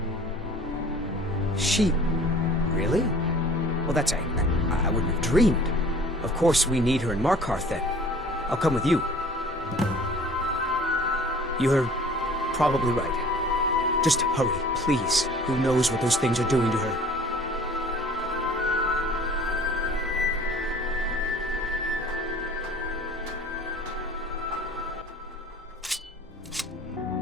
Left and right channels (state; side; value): normal; both; correlation 0.48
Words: She... Really? Well, that's... I wouldn't have dreamed. Of course we need her in Markarth, then. I'll come with you. You're probably right. Just hurry, please. Who knows what those things are doing to her?